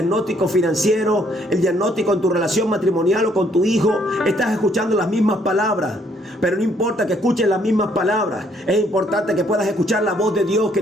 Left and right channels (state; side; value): normal; both; correlation 0.67